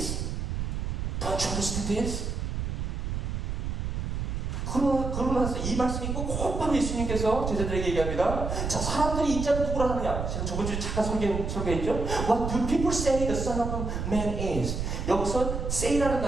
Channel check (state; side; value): noise; right; rumble, 3 dB below the sound